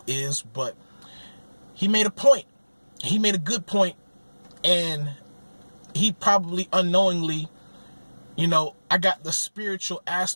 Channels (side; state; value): both; inverted; correlation -1.00